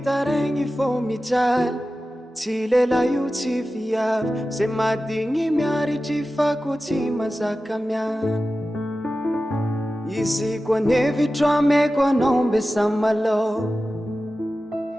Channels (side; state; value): both; normal; correlation 0.94